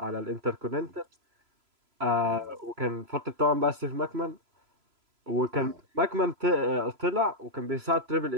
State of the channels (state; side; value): late; left; 3.0 ms